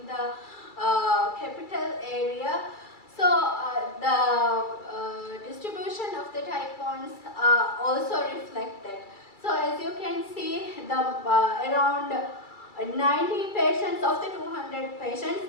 the capital area. So the distribution of the type 1s also reflected. So as you can see, the around 90 patients of the 200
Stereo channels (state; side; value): late; right; 2.3 ms